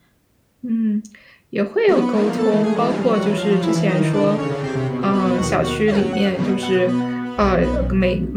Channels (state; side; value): identical; both; correlation 1.00